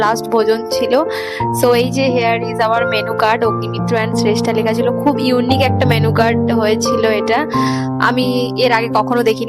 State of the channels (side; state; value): both; identical; correlation 1.00